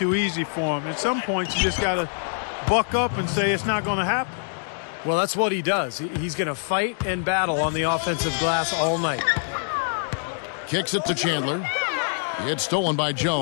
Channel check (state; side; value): silent; right; digital silence